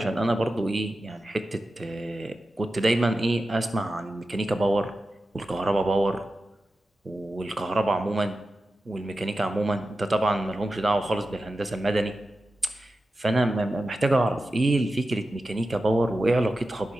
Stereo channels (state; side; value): normal; both; correlation 0.92